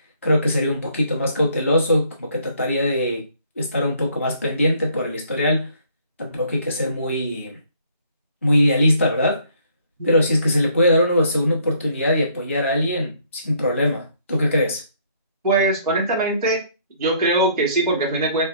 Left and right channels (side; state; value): both; inverted; correlation -0.64